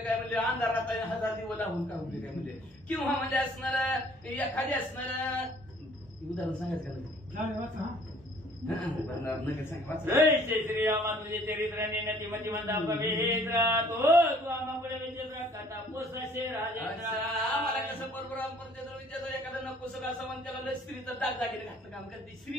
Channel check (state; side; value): normal; both; correlation 0.57